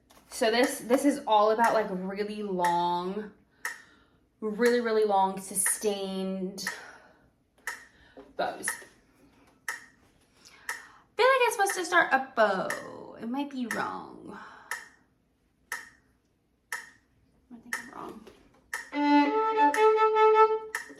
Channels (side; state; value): both; identical; correlation 1.00